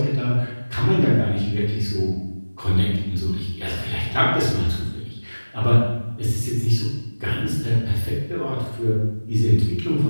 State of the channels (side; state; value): both; inverted; correlation -1.00